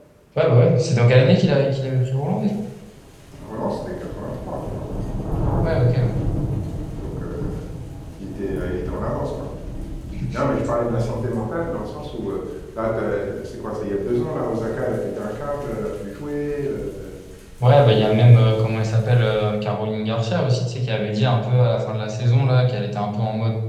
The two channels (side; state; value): both; identical; correlation 1.00